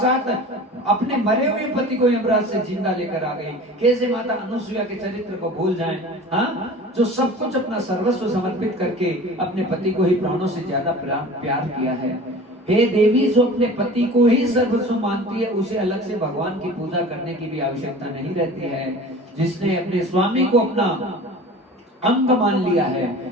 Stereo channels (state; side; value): normal; both; correlation 0.39